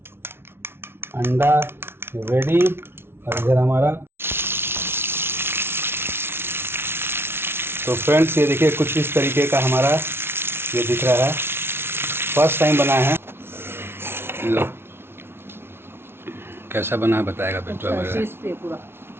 अंडा रेडी, और इधर हमारा, तो फ्रेंड्स ये देखिए कुछ इस तरीके का हमारा ये दिख रहा है, फर्स्ट टाइम बना है। लो कैसा बना है बताएगा बेटा मेरा।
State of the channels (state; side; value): late; left; 0.12 ms